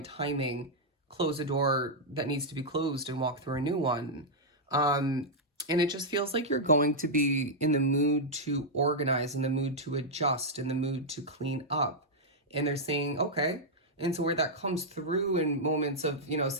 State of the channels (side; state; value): both; normal; correlation -0.05